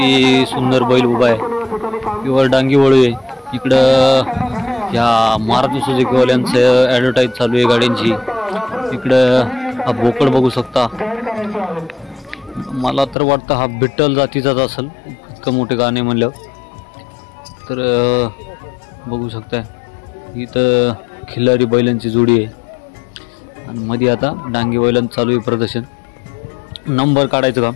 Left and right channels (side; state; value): right; drops out; at 13.2 s